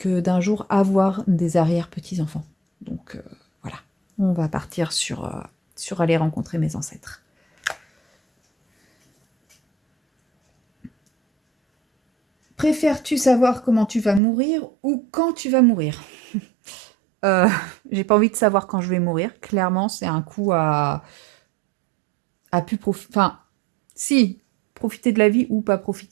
d'un jour avoir des arrière-petits-enfants. Donc voilà, on va partir sur aller rencontrer mes ancêtres. Préfères-tu savoir comment tu vas mourir ou quand tu vas mourir? Euh, j'ai pas envie de savoir quand je vais mourir. Clairement, c'est un coup à plus profiter. Enfin, si, profiter de la vie ou pas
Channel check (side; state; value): left; drops out; at 14.2 s